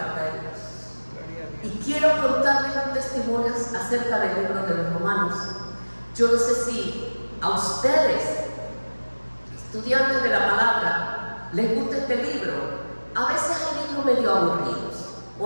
de Dios. Y quiero contarles un testimonio acerca del libro de los Romanos. Yo no sé si a ustedes, estudiantes de la palabra, les gusta este libro. A veces hay libros medio aburridos.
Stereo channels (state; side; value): inverted; both; correlation -1.00